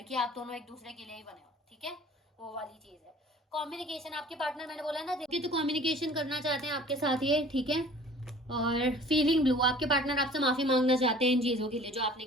कि आप दोनों एक दूसरे के लिए ही बने हो। ठीक है, वो वाली चीज़ है। कम्युनिकेशन, आपके पार्टनर मैंने बोला ना देखिए, तो कम्युनिकेशन करना चाहते हैं आपके साथ ये। ठीक है, और फीलिंग ब्लू, आपके पार्टनर आपसे माफ़ी मांगना चाहते हैं इन चीज़ों के लिए जो आपने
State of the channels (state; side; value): normal; both; correlation 0.48